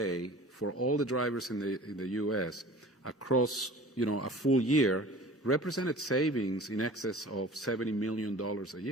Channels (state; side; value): normal; both; correlation 0.42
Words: for all the drivers in the U.S. across, a full year represented savings in excess of $70 million a